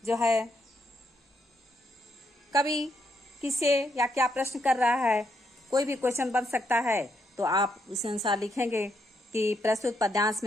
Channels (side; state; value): both; normal; correlation 0.77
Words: जो है कवि किससे या क्या प्रश्न कर रहा है, कोई भी क्वेश्चन बन सकता है, तो आप उस अनुसार लिखेंगे कि प्रस्तुत पद्यांश